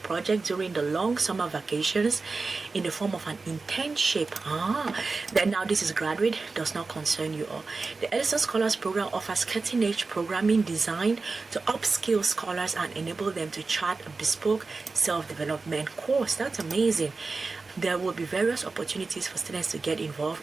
during the long summer vacations in the form of an internship. Then now this is graduate, does not concern you all. The Ellison Scholars Program offers cutting-edge programming designed to upskill scholars and enable them to chart a bespoke self-development course. That's amazing. There will be various opportunities for students to get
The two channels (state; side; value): quieter; left; 4.0 dB